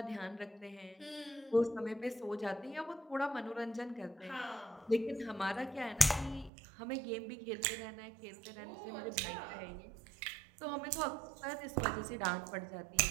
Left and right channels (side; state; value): left; drops out; at 6.5 s